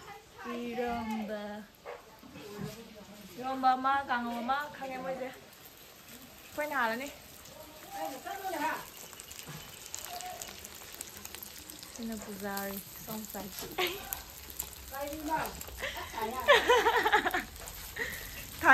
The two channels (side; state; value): both; identical; correlation 1.00